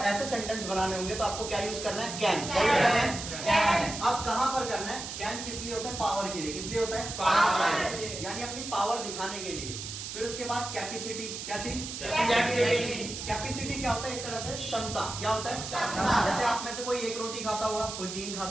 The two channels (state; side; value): noise; right; hiss, 7 dB below the sound